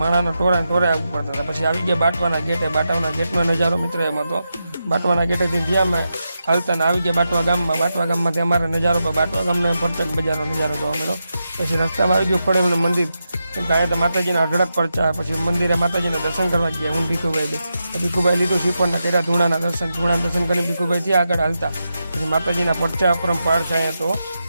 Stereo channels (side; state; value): both; inverted; correlation -0.88